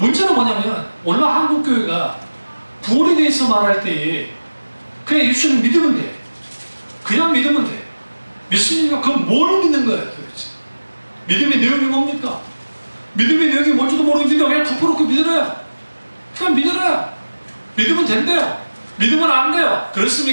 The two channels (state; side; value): inverted; both; correlation -1.00